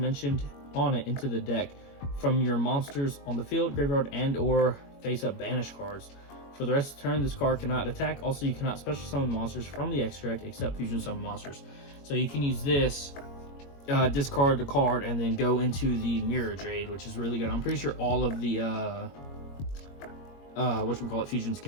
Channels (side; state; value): right; late; 21 ms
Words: on it into the deck from your monsters on the field, graveyard, and or face-up banish cards. For the rest of the turn, this card cannot attack. Also, you cannot special summon monsters from the extra deck except fusion summon monsters. So you can use this, discard the card, and then go into the Mirror Jade, which is really good. I'm pretty sure all of the fusions